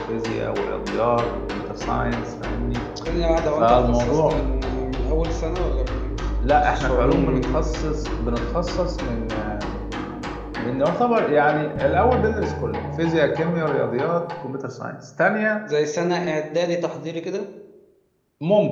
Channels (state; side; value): identical; both; correlation 1.00